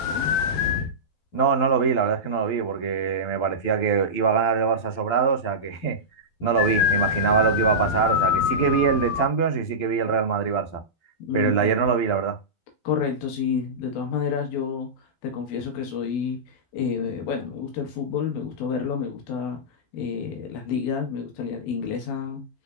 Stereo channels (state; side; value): late; right; 12 ms